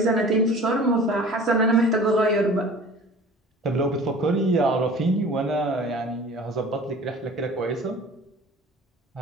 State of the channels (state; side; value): normal; both; correlation 0.43